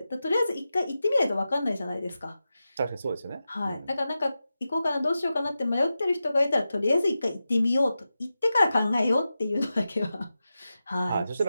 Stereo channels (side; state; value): both; inverted; correlation -0.92